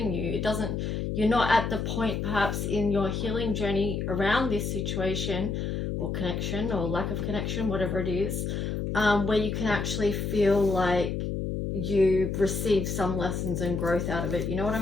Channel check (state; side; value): noise; left; hum, 2 dB below the sound